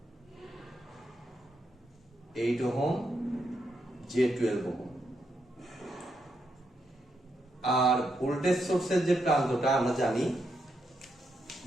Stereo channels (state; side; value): normal; both; correlation 0.81